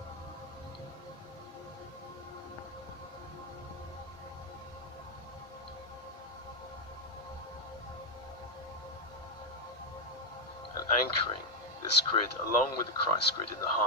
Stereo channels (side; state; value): both; normal; correlation 0.02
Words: And anchoring this grid along with the Christ grid in the